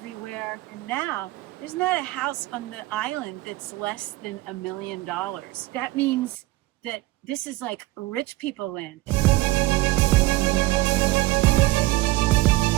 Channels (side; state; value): left; quieter; 18.6 dB